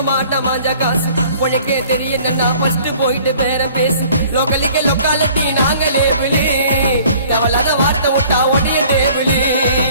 மாட்ட மாஞ்சா காசு உனக்கே தெரியும் நான் ஃபர்ஸ்ட் போயிட்டு பேர பேசு லோக்கலிக்க லொக்காலிட்டி நாங்களே விழி தேவலாத வார்த்தை விட்டா உடைய தேவிழி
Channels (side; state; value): both; inverted; correlation -0.53